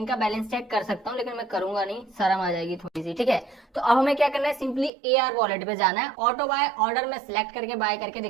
का बैलेंस चेक कर सकता हूँ, लेकिन मैं करूंगा नहीं, शर्म आ जाएगी थोड़ी सी, ठीक है। तो अब हमें क्या करना है, सिंपली AR वॉलेट पे जाना है, ऑटो बाय ऑर्डर में सिलेक्ट करके बाय करके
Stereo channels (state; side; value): drops out; left; at 4.9 s